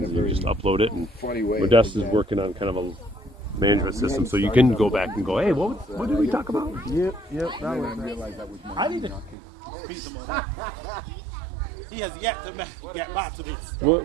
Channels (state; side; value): drops out; left; at 9.3 s